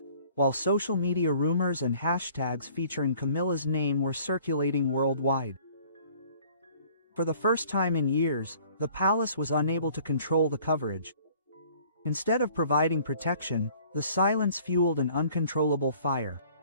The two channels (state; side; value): inverted; both; correlation -0.54